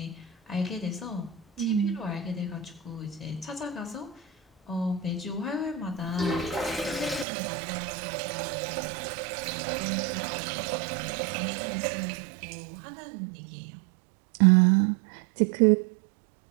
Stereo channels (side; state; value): left; drops out; at 7.2 s